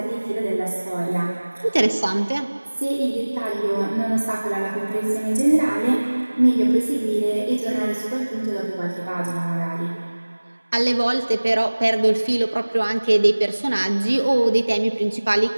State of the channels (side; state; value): both; inverted; correlation -1.00